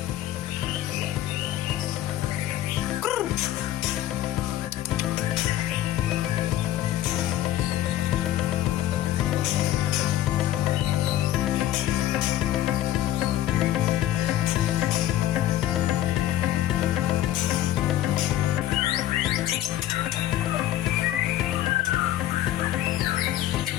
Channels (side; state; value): right; quieter; 13.4 dB